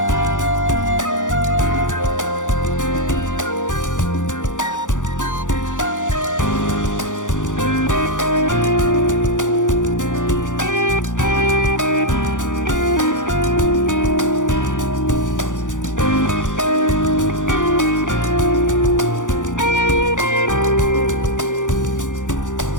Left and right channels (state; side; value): late; right; 0.86 ms